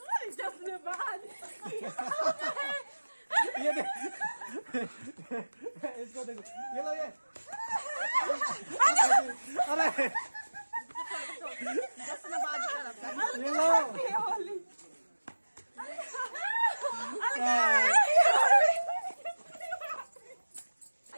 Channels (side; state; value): both; inverted; correlation -1.00